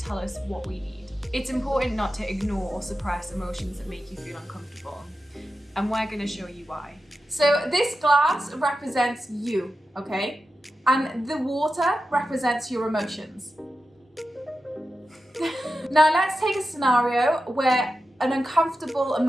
us what we need. It's important not to ignore or suppress emotions that make you feel uncomfortable. And we're going to show you why. So this glass represents you, okay? And the water represents your emotions. Now let's take a scenario where an uncomfortable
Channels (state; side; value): normal; both; correlation 0.91